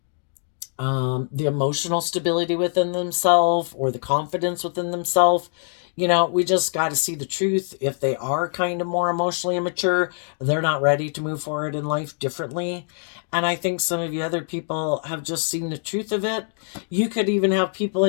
the emotional stability within themselves or the confidence within themselves, we just got to see the truth. If they are kind of more emotionally immature, they're not ready to move forward in life differently. And I think some of you other people have just seen the truth of it. You could even have people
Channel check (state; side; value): silent; right; 58 dB below the other